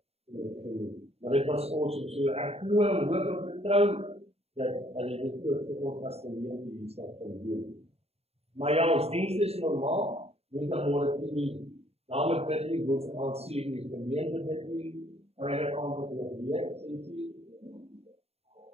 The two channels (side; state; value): left; late; 0.30 ms